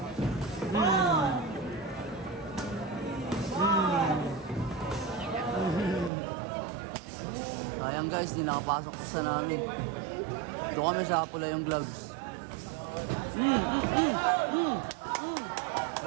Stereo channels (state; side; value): drops out; left; at 6.1 s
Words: Sayang guys, di nakapasok ko sa namin. Doon kami sa pula yung gloves.